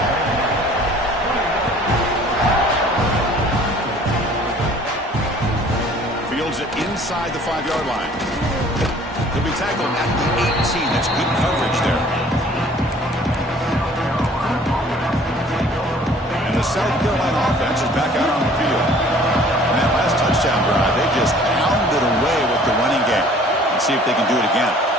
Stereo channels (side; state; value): both; normal; correlation 0.53